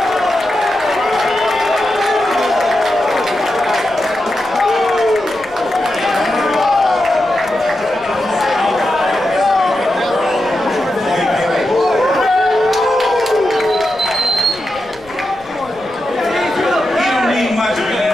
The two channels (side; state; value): left; noise; rumble, 25 dB below the sound